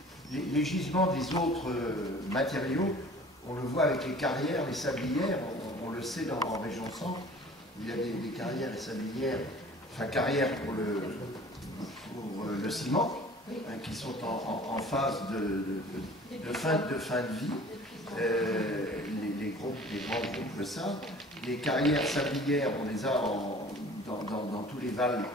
les gisements des autres matériaux, on le voit avec les carrières, les sablières, on le sait en région centre, il y a des carrières et sablières, enfin carrières pour le ciment, hein, qui sont en phase de fin de vie. grands groupes le savent. Les carrières sablières, on les a dans tous les vals,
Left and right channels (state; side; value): normal; both; correlation 0.47